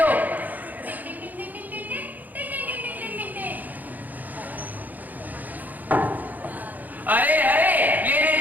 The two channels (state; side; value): late; left; 0.083 ms